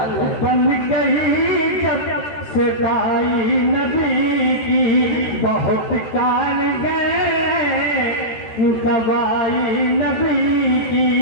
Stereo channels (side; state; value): right; late; 13 ms